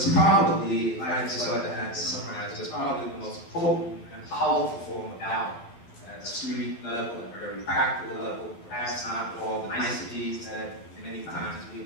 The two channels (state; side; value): late; right; 12 ms